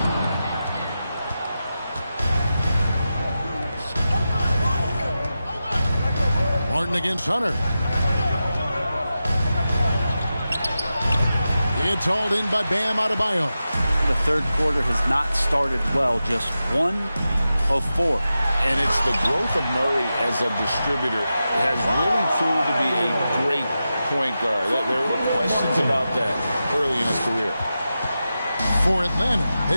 Martin against Hunter. It's hauled in by Bam Adebayo. The third quarter has not started well, just 1 of 4. And it's the growth of Murray as a distributor has really proved to be a great point guard. There were questions about that early in his career. For Atlanta,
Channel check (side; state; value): both; inverted; correlation -0.92